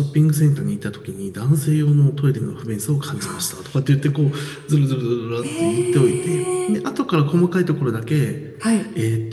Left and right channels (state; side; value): identical; both; correlation 1.00